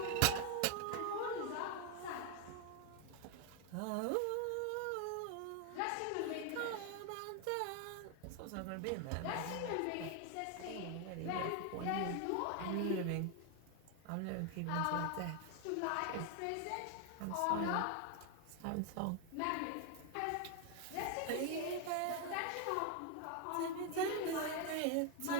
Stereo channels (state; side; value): different; both; correlation 0.01